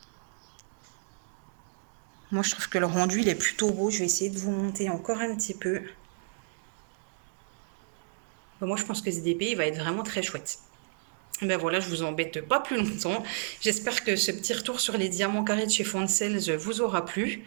Moi, je trouve que le rendu, il est plutôt beau. Je vais essayer de vous monter encore un petit peu. Bah, moi, je pense que ce DP, il va être vraiment très chouette. Ben voilà, je vous embête pas plus longtemps. J'espère que ce petit retour sur les diamants carrés de chez Foncels vous aura plu.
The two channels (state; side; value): silent; left; digital silence